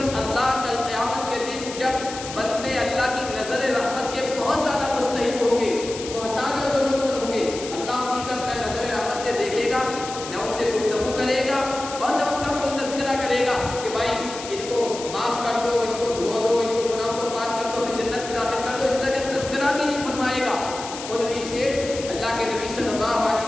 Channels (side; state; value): left; noise; hiss, 11 dB below the sound